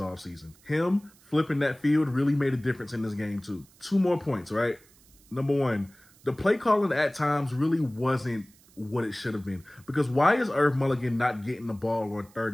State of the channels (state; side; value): noise; right; hiss, 28 dB below the sound